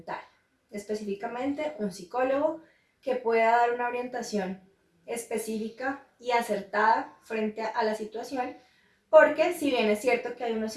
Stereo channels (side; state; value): both; identical; correlation 1.00